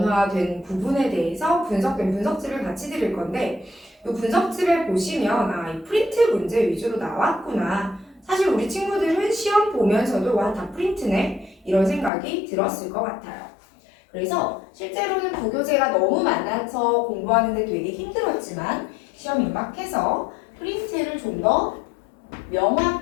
부분에 대해서 분석된 분석집을 같이 드릴 건데, 이 분석집에 보시면 이 프린트 문제 위주로 나왔구나. 사실 우리 친구들은 시험 보면서도 와, 다 프린트네 이런 생각이 들었을 것 같아요. 그래서 실제로는 부교재가 너무 많아서 공부하는데 되게 힘들었지만 시험 임박해서 프린트를 좀 더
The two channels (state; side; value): drops out; right; at 12.1 s